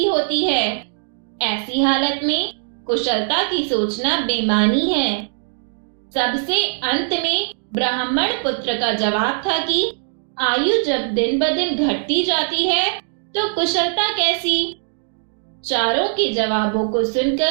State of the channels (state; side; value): silent; left; digital silence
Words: होती है। ऐसी हालत में कुशलता की सोचना बेमानी है। सबसे अंत में ब्राह्मण पुत्र का जवाब था कि आयु जब दिन ब दिन घटती जाती है तो कुशलता कैसी। चारों के जवाबों को